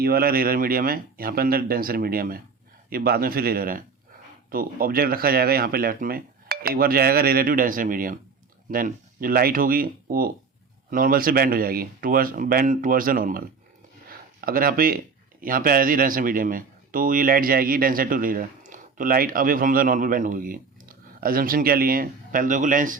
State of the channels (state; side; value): quieter; left; 5.0 dB